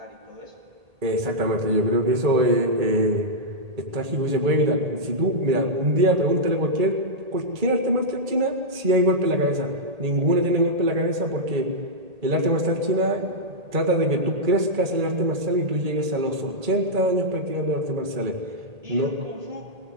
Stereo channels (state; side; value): late; left; 1.8 ms